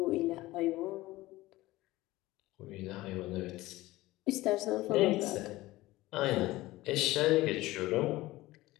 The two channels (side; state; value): right; quieter; 18.2 dB